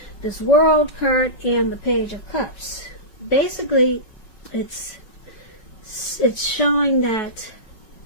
This World card and the Page of Cups. Basically, it's showing that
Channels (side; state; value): right; late; 5.4 ms